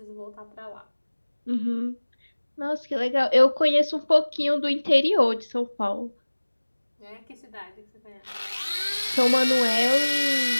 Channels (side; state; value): both; inverted; correlation -1.00